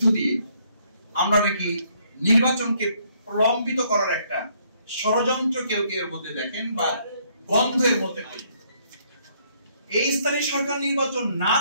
দিয়ে আমরা নাকি নির্বাচনকে প্রলম্বিত করার একটা ষড়যন্ত্র কেউ কেউ এর মধ্যে দেখেন বা বন্ধের মধ্যে করি। এই স্থানীয় সরকার নির্বাচন না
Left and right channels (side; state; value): both; inverted; correlation -0.68